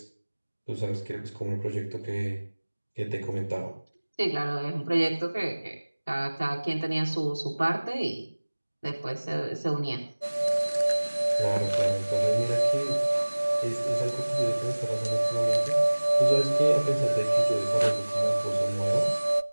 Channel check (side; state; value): both; inverted; correlation -1.00